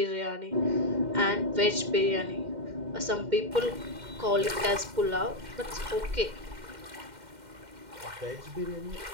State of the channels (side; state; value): left; late; 2.1 ms